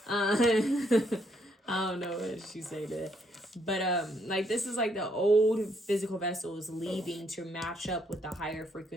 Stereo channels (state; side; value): normal; both; correlation 0.72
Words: I don't know what she say that. But like this is like the old physical vessel is leaving to match up with the higher